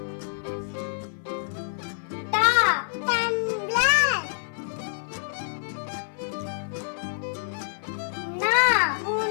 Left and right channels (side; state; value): right; silent; 56 dB below the other